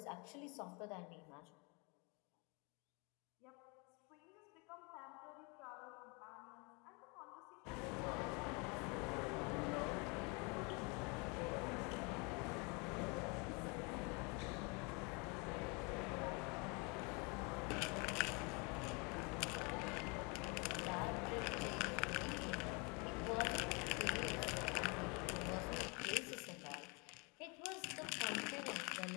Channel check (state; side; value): quieter; right; 30.6 dB